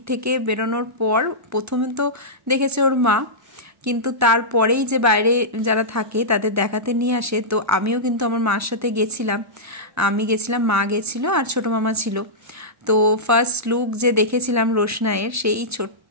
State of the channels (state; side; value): normal; both; correlation -0.13